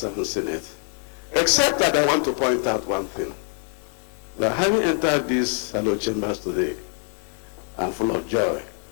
Senate. Except that I want to point out one thing. That having entered these hallowed chambers today, I'm full of joy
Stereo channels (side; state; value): right; quieter; 39.7 dB